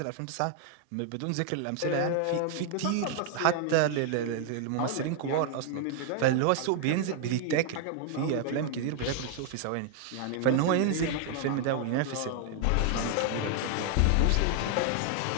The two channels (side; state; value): both; different; correlation 0.00